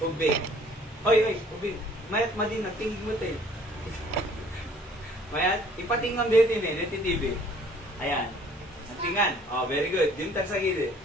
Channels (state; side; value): normal; both; correlation 0.56